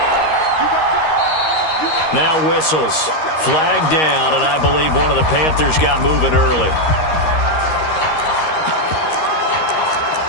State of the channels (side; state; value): right; late; 13 ms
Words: Now whistles. Flag down, and I believe one of the Panthers got moving early.